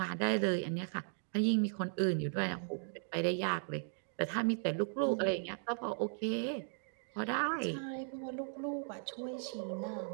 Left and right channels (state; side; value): silent; left; digital silence